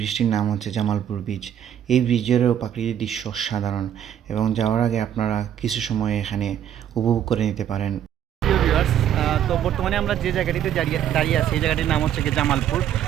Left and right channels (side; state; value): left; quieter; 10.1 dB